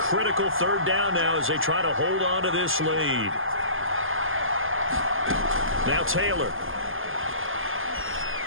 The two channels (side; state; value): left; late; 0.59 ms